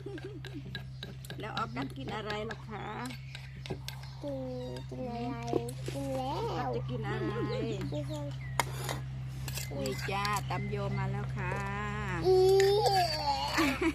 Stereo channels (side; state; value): both; identical; correlation 1.00